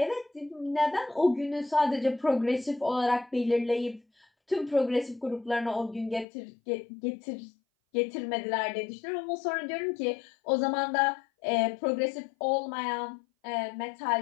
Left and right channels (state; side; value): drops out; right; at 6.2 s